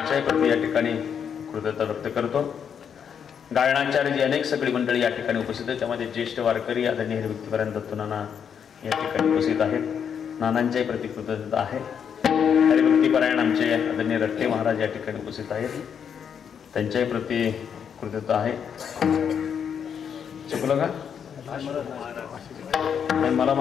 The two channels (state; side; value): quieter; right; 7.6 dB